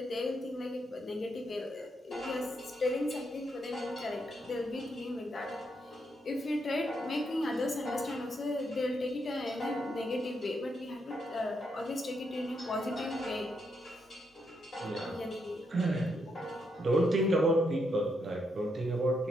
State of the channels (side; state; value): both; normal; correlation 0.79